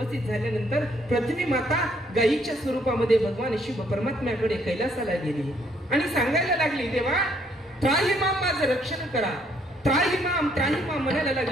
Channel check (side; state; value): both; normal; correlation 0.68